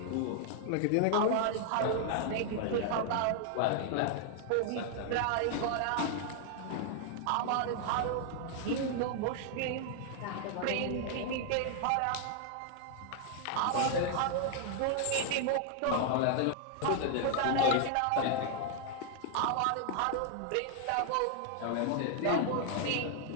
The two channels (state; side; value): different; both; correlation 0.00